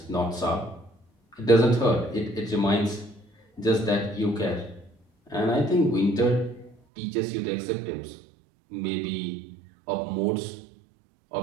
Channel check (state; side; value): drops out; left; at 6.8 s